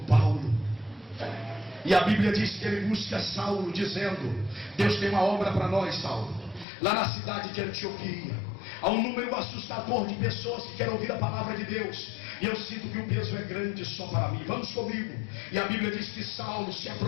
E a Bíblia diz que ele busca Saulo, dizendo: Deus tem uma obra para nós, Saulo. Lá na cidade de Antioquia, há um número assustador de pessoas que querem ouvir a palavra de Deus, e eu sinto que o peso é grande só para mim. Vamos comigo. E a Bíblia diz que Saulo se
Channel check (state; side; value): drops out; right; at 6.7 s